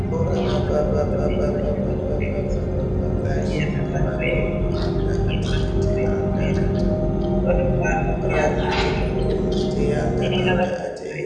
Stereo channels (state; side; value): identical; both; correlation 1.00